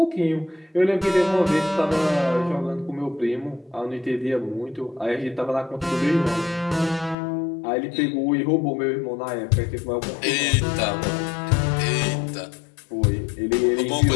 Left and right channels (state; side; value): drops out; right; at 7.2 s